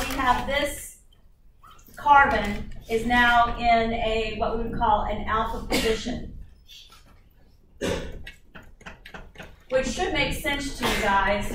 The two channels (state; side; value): identical; both; correlation 1.00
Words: have this carbon is now in a what we would call an alpha position, which should make sense to you guys,